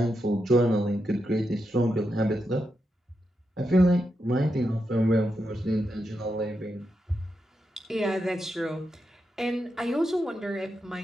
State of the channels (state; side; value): normal; both; correlation 0.86